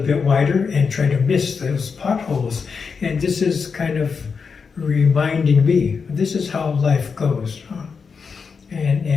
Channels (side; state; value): right; quieter; 5.5 dB